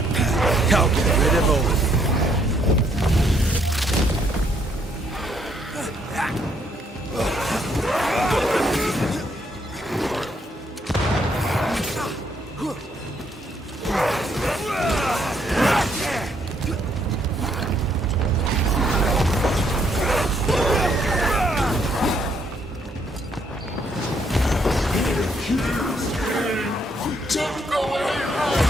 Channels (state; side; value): normal; both; correlation 0.71